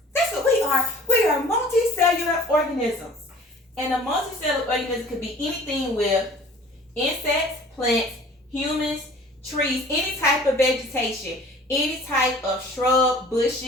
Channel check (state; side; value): normal; both; correlation 0.48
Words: That's what we are. We are multicellular organisms. And a multicellular organism could be anything with insects, plants, humans, trees, any type of vegetation, any type of shrub,